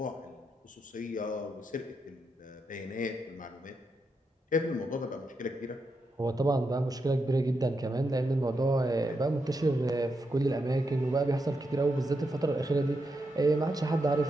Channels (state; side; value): normal; both; correlation 0.84